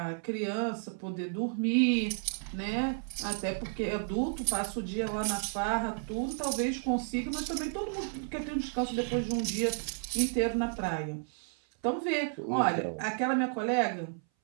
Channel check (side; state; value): left; silent; 56 dB below the other